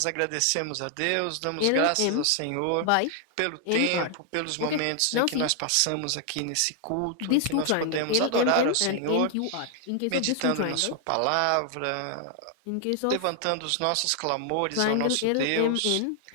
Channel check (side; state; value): both; different; correlation 0.00